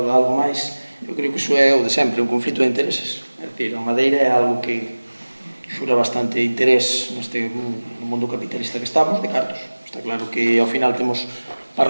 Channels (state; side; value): inverted; both; correlation -1.00